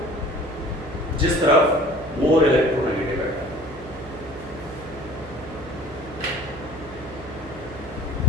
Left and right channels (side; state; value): right; noise; hum, 16 dB below the sound